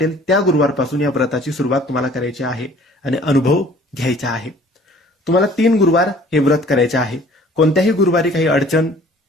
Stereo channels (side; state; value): both; normal; correlation 0.52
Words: त्या गुरुवारपासून या व्रताची सुरुवात तुम्हाला करायची आहे आणि अनुभव घ्यायचा आहे. तुम्हाला 3 गुरुवार हे व्रत करायचे आहे. कोणत्याही गुरुवारी काही अडचण,